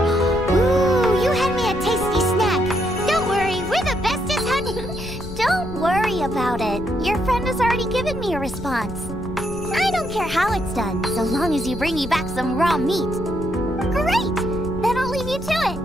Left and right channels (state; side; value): noise; left; rumble, 11 dB below the sound